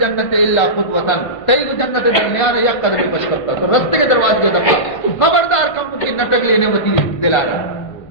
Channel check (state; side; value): late; right; 1.5 ms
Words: الا خطوۃ تئی جنت درمیان یک قدم پش کرتا تو رستے کے دروازے کے دفعہ خبردار کم کی نٹک لینے وتی دلا رہا